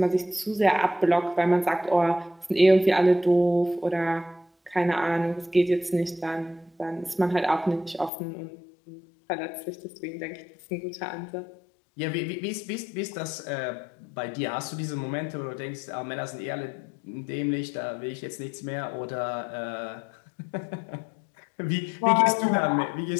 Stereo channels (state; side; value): drops out; right; at 8.1 s